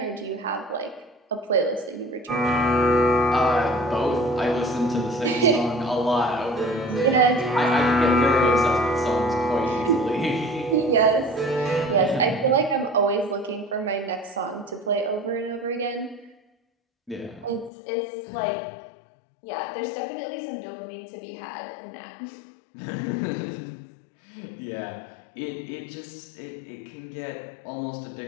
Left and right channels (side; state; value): right; drops out; at 17.7 s